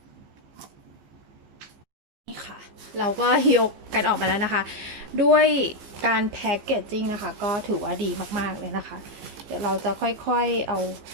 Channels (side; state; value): left; late; 15 ms